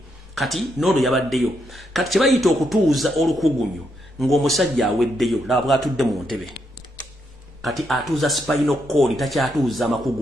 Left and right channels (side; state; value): both; normal; correlation 0.79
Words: kati n'ono yabaddeyo kati kye bayita okutuuza olukugunyu ng'omusajja aweddeyo laba bw'atudde mu ntebe kati atuuza spinal cord takyatuuza